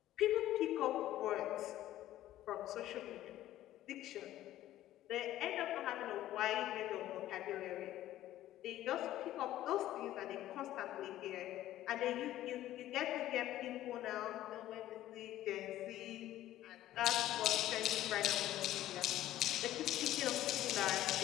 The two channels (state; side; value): quieter; right; 13.8 dB